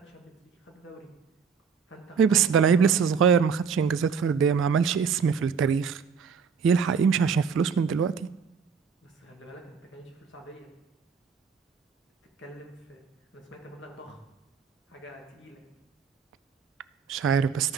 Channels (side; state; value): left; quieter; 6.2 dB